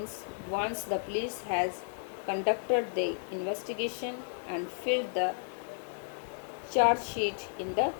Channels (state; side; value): silent; right; digital silence